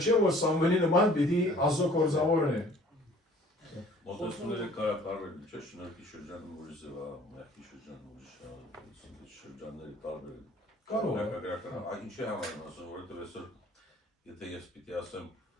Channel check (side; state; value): both; normal; correlation 0.53